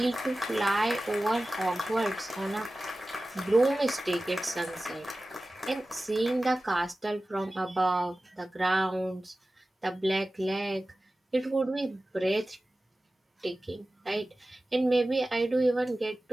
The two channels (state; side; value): normal; both; correlation 0.96